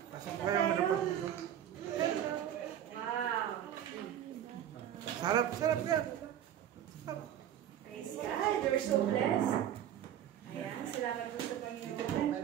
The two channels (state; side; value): quieter; left; 10.6 dB